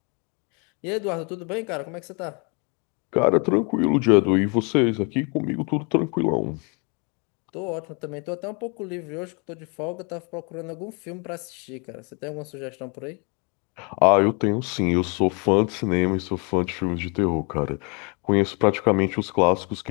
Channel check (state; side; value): quieter; right; 33.6 dB